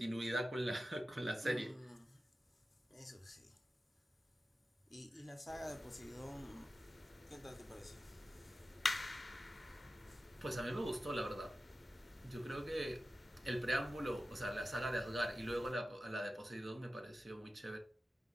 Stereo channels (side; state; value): both; normal; correlation 0.94